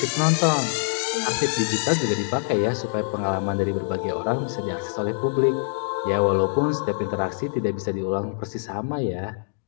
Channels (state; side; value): silent; right; digital silence